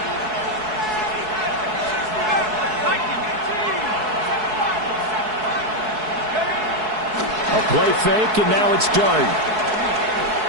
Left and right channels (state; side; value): late; left; 4.7 ms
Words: Play fake, and now it's Dart.